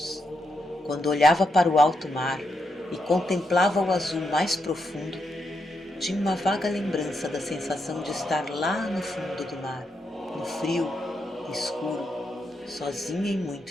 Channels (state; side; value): normal; both; correlation 0.82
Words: quando olhava para o alto mar e contemplava o azul mais profundo, tinha uma vaga lembrança da sensação de estar lá no fundo do mar, no frio escuro, sozinha e